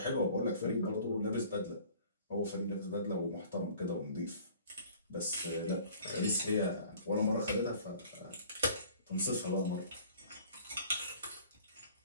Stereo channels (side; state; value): both; inverted; correlation -0.50